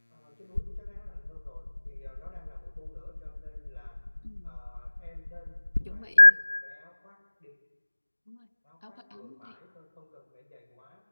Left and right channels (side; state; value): both; inverted; correlation -1.00